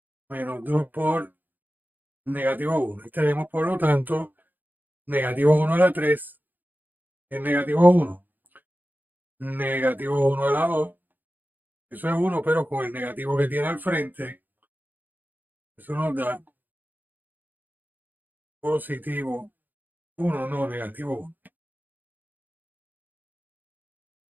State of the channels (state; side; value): late; left; 0.086 ms